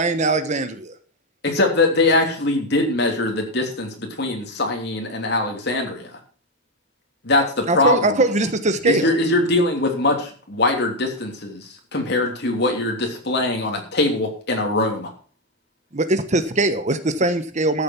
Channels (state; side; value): normal; both; correlation 0.05